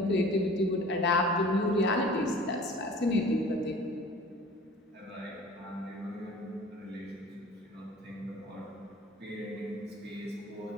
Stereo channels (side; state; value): both; normal; correlation 0.46